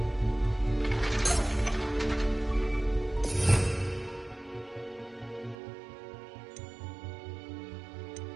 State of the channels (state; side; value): drops out; left; at 5.6 s